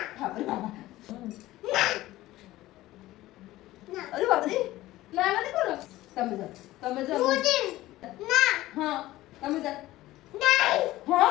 বাবা বাবা আরে বাবা রে না মানে করো তুমি যা না হ্যাঁ তুমি যা নাই হ্যাঁ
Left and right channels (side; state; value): right; quieter; 16.6 dB